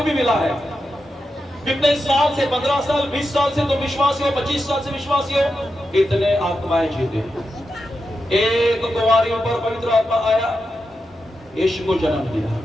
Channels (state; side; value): normal; both; correlation 0.88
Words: भी मिला है। कितने साल से, 15 साल, 20 साल से तुम विश्वासी हो, 25 साल से विश्वासी हो, इतने आत्माएं जीते। एक कुंवारी पर पवित्र आत्मा आया, यीशु को जन्म दिया।